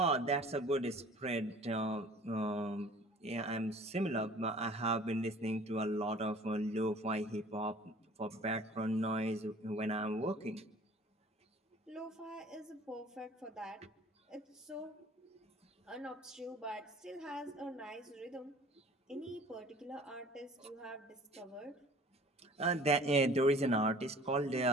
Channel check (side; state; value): both; normal; correlation 0.48